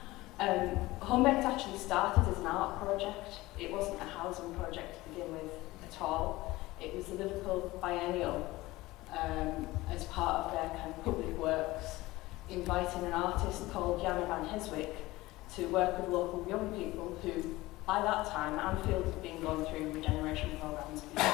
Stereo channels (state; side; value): quieter; right; 19.2 dB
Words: Homebaked actually started as an art project. It wasn't a housing project to begin with at all. It was the Liverpool Biennial, as part of their kind of public works, inviting an artist called Jana van Heswick to work with local young people who, by that time, Anfield had been going through regeneration programmes